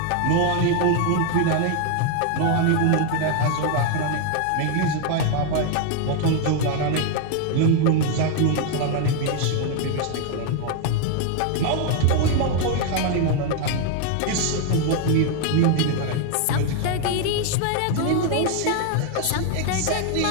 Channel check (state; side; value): different; both; correlation 0.01